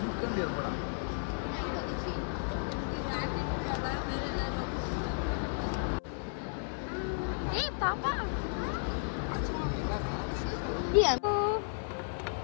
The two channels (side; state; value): right; silent; 55 dB below the other